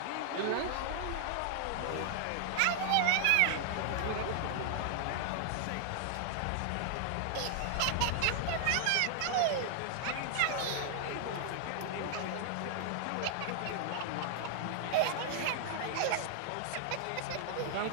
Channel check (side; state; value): both; different; correlation -0.01